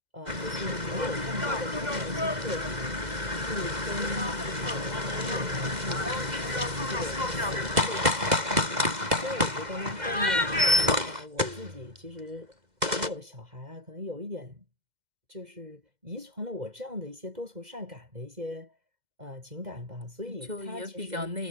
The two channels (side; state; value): left; late; 2.0 ms